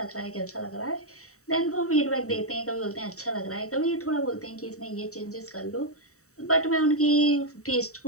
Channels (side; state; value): right; late; 0.65 ms